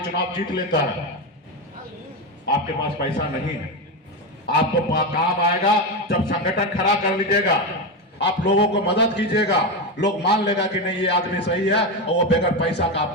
चुनाव जीत लेता है। आपके पास पैसा नहीं है। आपको काम आएगा जब संगठन खड़ा कर लीजिएगा, आप लोगों को मदद कीजिएगा, लोग मान लेगा कि नहीं ये आदमी सही है और वो बगैर पैसा का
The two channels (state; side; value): normal; both; correlation 0.13